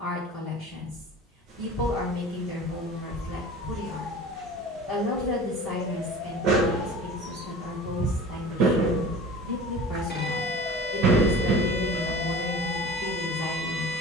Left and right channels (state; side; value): normal; both; correlation 0.39